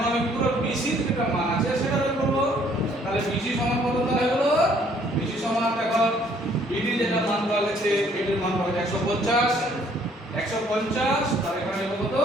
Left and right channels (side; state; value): both; normal; correlation 0.62